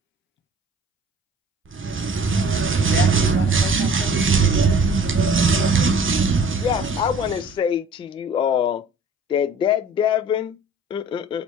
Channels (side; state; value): both; normal; correlation 0.48